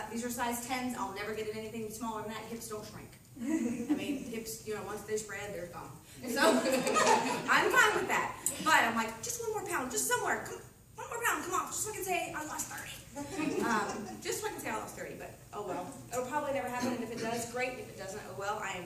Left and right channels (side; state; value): both; identical; correlation 1.00